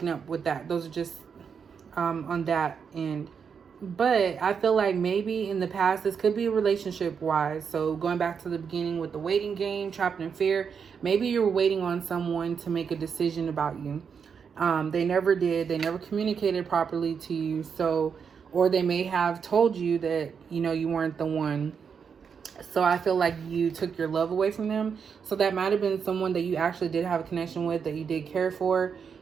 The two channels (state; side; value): quieter; left; 6.5 dB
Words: up with that. Those are just on that end. But I feel like maybe in the past, this could be relationship wise. So going back to the beginning with the waiting game, trapped in fear, maybe you were waiting on someone to make a decision about you. They never did. They never communicated properly to you. So, or they may have told you that, you know, you weren't the one. So I feel like you took your love away from them. So that might have been someone that you actually did have a connection with, that you did care for.